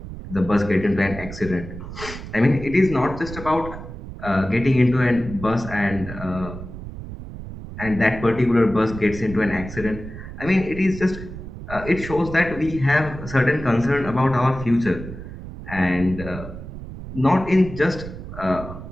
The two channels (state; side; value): noise; right; rumble, 11 dB below the sound